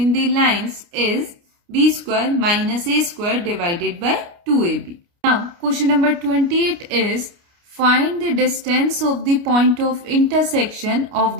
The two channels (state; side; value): late; left; 29 ms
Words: the lines is b square minus a square divided by 2ab. Now, question number 28 is, find the distance of the point of intersection of